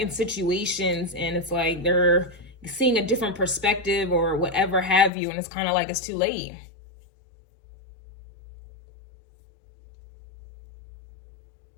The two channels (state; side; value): drops out; right; at 5.1 s